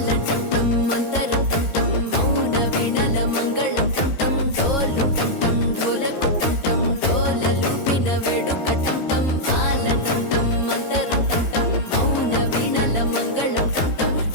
టంటం మంతరం టంటం మౌన వీణల మంగళం టంటం డోలు టంటం ఢోలకు టంటం డోలలు విన వేడుక టంటం మాల టంటం మంతరం టంటం మౌన వీణల మంగళం టంటం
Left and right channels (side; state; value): right; late; 13 ms